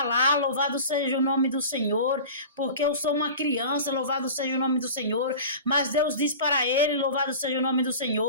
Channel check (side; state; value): both; inverted; correlation -0.36